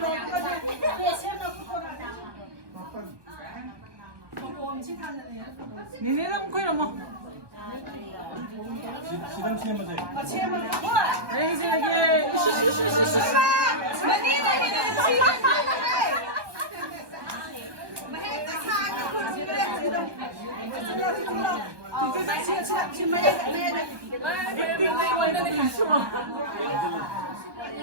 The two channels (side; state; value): left; late; 1.2 ms